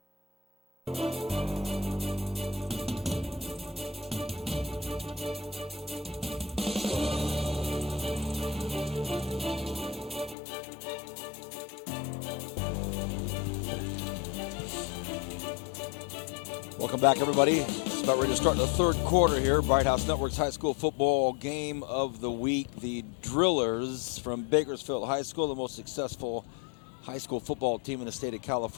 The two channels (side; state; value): right; drops out; at 10.4 s